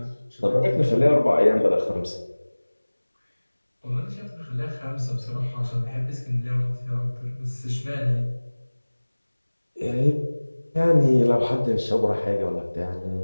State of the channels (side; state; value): both; inverted; correlation -1.00